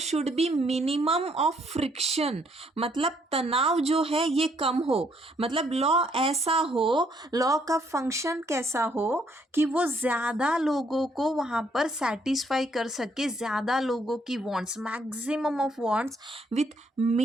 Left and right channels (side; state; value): both; normal; correlation 0.69